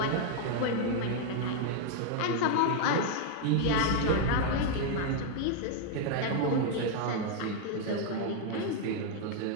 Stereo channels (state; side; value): different; both; correlation 0.00